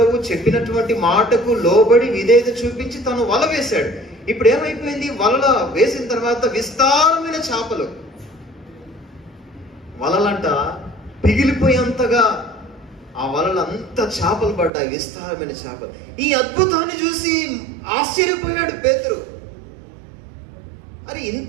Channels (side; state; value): left; drops out; at 14.7 s